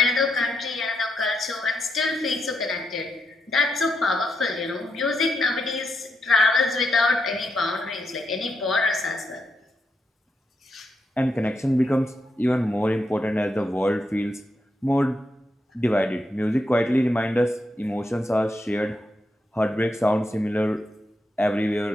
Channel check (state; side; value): normal; both; correlation 0.83